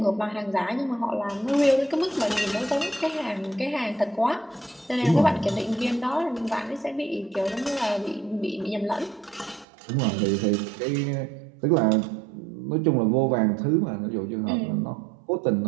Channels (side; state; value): left; drops out; at 9.7 s